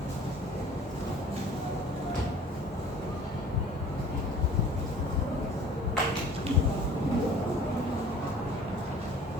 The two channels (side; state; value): both; normal; correlation 0.48